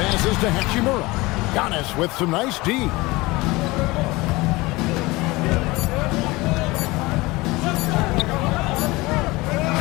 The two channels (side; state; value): right; quieter; 21.8 dB